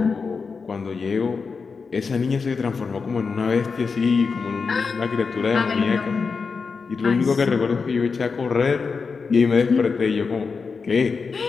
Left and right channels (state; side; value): quieter; right; 5.0 dB